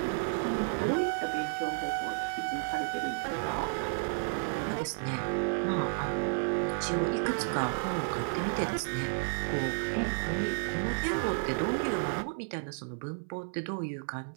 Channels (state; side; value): silent; left; 56 dB below the other